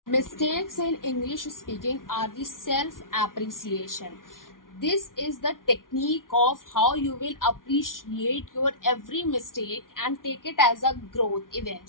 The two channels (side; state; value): right; late; 0.90 ms